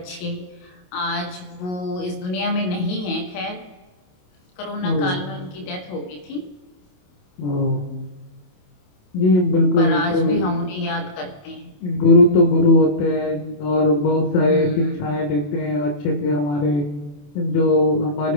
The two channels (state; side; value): late; right; 27 ms